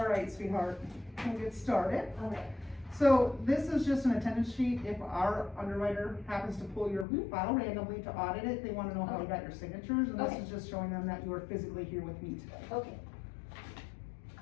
right, sweetheart, we'll get started. All right. So this is just an attendance sheet. If our underwriter happens to pull your Mhm. file randomly to audit it, they wanna know how you Okay. got your signatures, and this Okay. is just showing them that you are physically here with me today. Okay.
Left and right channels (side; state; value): right; drops out; at 7.1 s